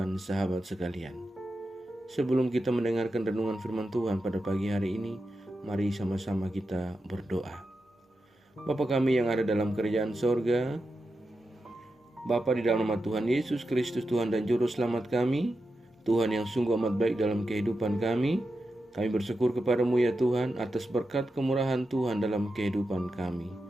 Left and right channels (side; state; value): both; normal; correlation 0.89